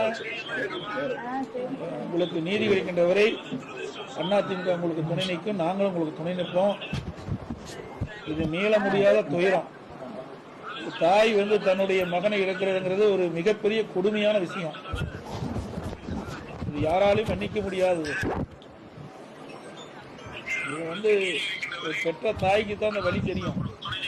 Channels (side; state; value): both; identical; correlation 1.00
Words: உங்களுக்கு நீதி கிடைக்கின்ற வரை அதிமுக உங்களுக்கு துணை நிற்கும், நாங்களும் உங்களுக்கு துணை நிற்போம். இது மீள முடியாத துயரம். தாய் வந்து தன்னுடைய மகனை இழக்கிறதுங்கிறது ஒரு மிகப்பெரிய கொடுமையான விஷயம். இது யாராலையும் மன்னிக்க முடியாதது. இது வந்து பெற்ற தாய்க்கு தான் அந்த வழி தெரியும்.